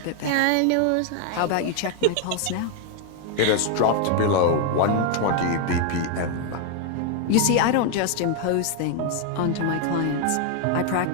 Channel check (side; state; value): both; different; correlation 0.00